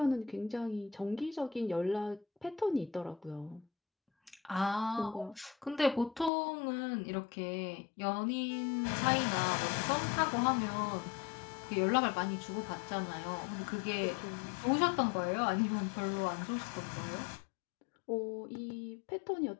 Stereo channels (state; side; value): drops out; right; at 6.3 s